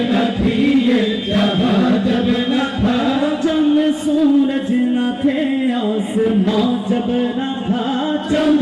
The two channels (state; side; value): identical; both; correlation 1.00